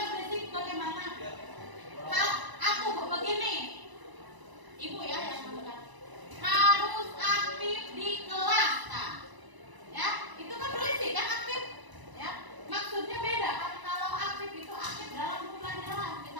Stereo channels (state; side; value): late; left; 1.0 ms